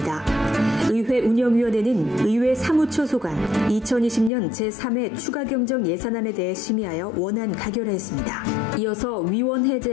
의회 운영위원회는 의회 사무처 소관 2020년 제3회 추가경정 예산안에 대해 심의하여 원안 가결하였습니다. 이어서 위원회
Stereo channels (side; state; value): right; drops out; at 4.3 s